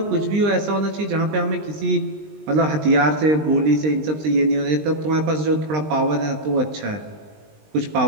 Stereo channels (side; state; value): left; late; 20 ms